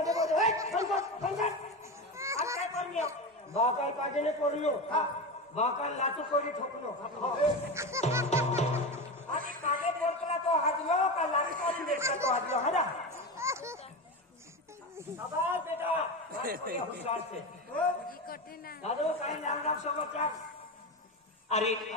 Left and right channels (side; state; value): both; normal; correlation 0.21